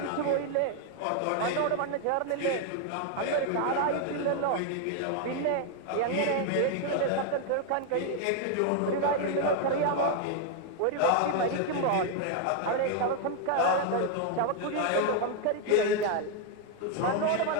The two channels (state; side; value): different; both; correlation 0.00